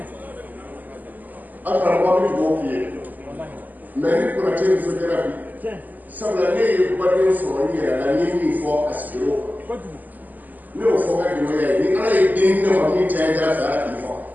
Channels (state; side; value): late; left; 0.083 ms